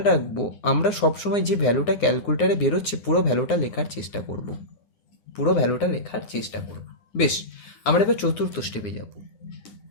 রাখবো, আমরা সবসময় যে ভ্যালুটা ক্যালকুলেটারে বেরোচ্ছে পুরো ভ্যালুটা লেখার চেষ্টা করব, বেশ, আমরা এবার চতুর্থ স্টেপে যাব।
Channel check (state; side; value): late; right; 9.6 ms